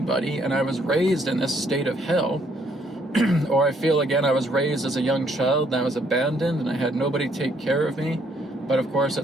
and I was raised in this state of hell. Or I feel, again, I was raised as a young child and I was abandoned and I had nobody take care of me. But of course,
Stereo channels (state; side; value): normal; both; correlation 0.69